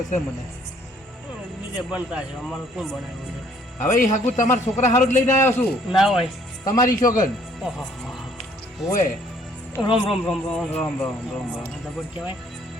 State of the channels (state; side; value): normal; both; correlation 0.62